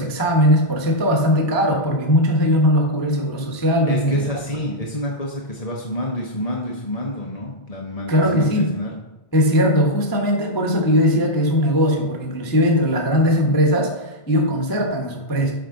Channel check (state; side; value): late; right; 1.0 ms